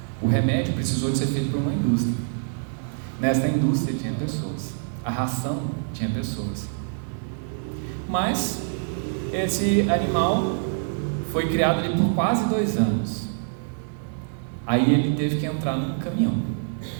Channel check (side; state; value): left; silent; 57 dB below the other